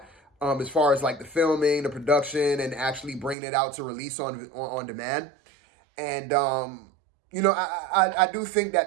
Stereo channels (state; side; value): drops out; left; at 3.4 s